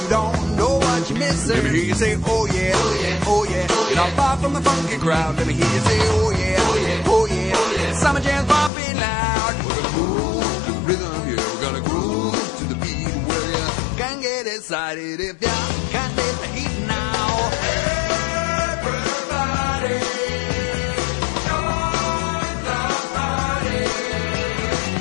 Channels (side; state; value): right; drops out; at 8.7 s